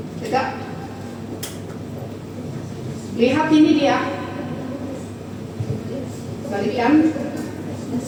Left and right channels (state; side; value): identical; both; correlation 1.00